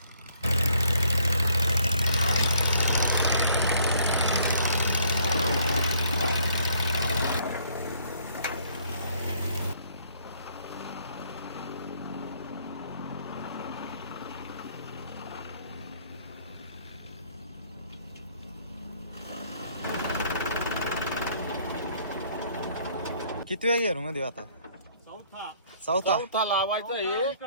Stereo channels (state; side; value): inverted; both; correlation -0.64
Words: किती वेळ गेलो मध्ये आता? चौथा लावायचं हे